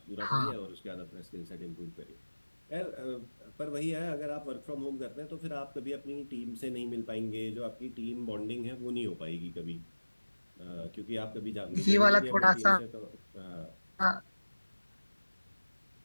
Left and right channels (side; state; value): both; inverted; correlation -1.00